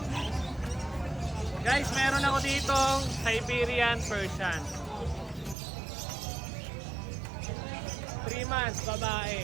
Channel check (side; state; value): left; drops out; at 5.6 s